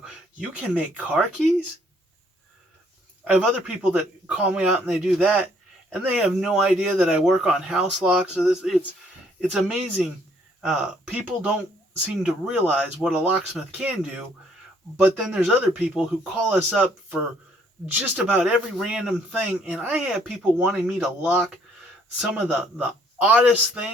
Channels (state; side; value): normal; both; correlation 0.65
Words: you can make car keys? I have other people that call me out and they do that. And they have no idea that I work on house locks. So it's amazing. People don't seem to realize what a locksmith can do. But then there's other people who call us up for just about every random thing. And I have people wanting me to lock some of the oddest